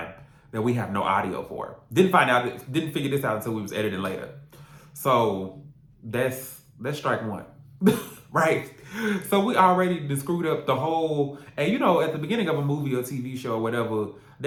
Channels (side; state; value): both; identical; correlation 1.00